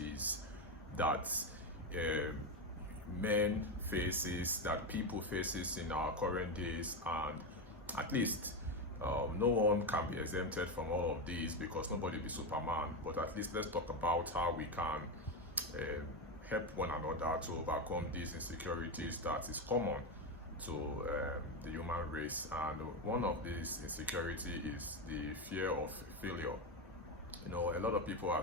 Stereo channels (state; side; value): normal; both; correlation 0.12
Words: that men faces, that people faces in our current days, and at least no one can be exempted from all of these because nobody be Superman. But at least let's talk about how we can help one another to overcome these insecurities that is common to the human race. And one of these insecurity is the fear of failure. You know, a lot of people